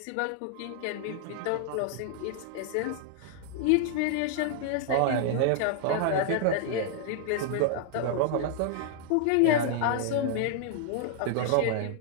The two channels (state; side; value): different; both; correlation -0.01